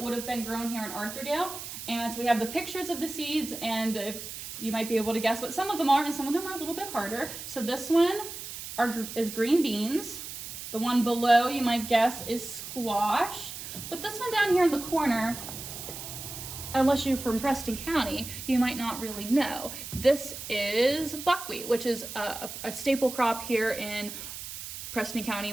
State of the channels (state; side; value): noise; right; hiss, 9 dB below the sound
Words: would have been grown here in Arthurdale. And so we have the pictures of the seeds, and you might be able to guess what some of them are, and some of them are a little bit harder. So this one is green beans. The one below, you might guess, is squash. But this one down here in the corner, unless you're from Preston County, you might not really know. This is buckwheat, which is a staple crop here in Preston County,